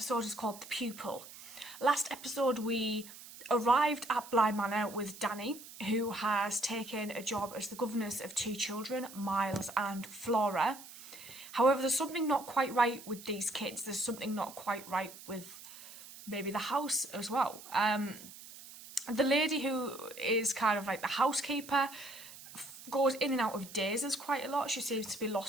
is called The Pupil. Last episode we arrived at Bly Manor with Danny, who has taken a job as the governess of 2 children, Miles and Flora. However, there's something not quite right with these kids. There's something not quite right with maybe the house as well. The lady who is kind of like the housekeeper goes in and out of dazes quite a lot. She seems to be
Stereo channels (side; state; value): right; noise; hiss, 16 dB below the sound